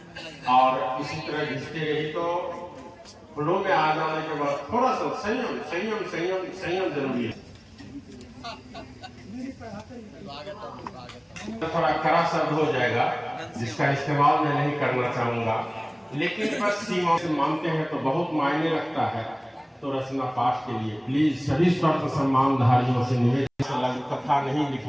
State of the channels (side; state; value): both; identical; correlation 1.00